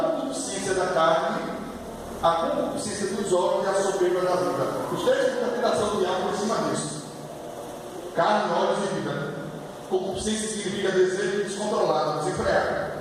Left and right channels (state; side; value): identical; both; correlation 1.00